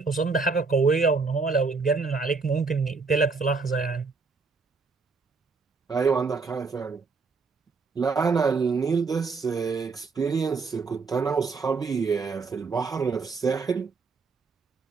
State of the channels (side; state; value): left; quieter; 4.6 dB